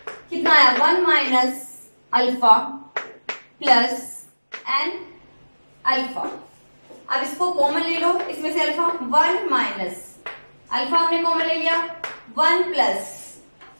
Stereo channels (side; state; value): both; inverted; correlation -1.00